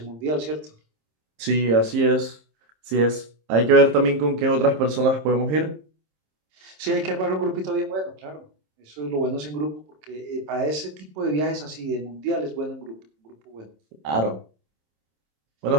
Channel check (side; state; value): left; late; 27 ms